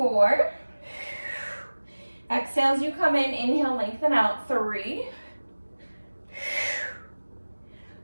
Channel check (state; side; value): inverted; both; correlation -1.00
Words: Exhale as you come in, inhale, lengthen out. 3,